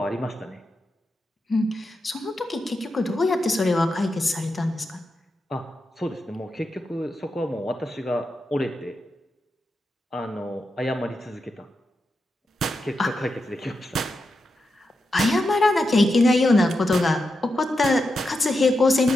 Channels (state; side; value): normal; both; correlation 0.88